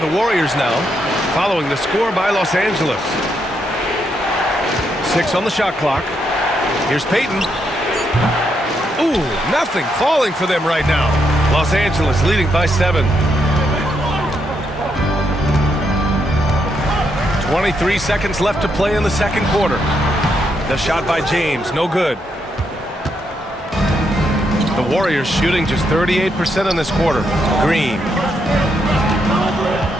Warriors now, following the score by Los Angeles. 6 on the shot clock. Here's Payton. Ooh, nothing falling for them right now. Los Angeles leading by 7. 23 seconds left to play in the second quarter. The shot by James, no good. The Warriors shooting just 38% in this quarter. Green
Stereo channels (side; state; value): both; normal; correlation 0.79